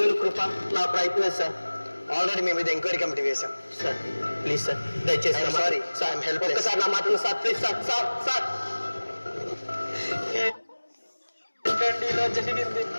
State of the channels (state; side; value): inverted; both; correlation -1.00